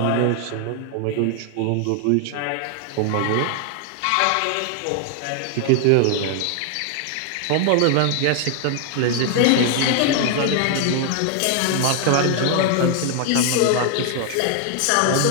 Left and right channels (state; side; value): different; both; correlation 0.00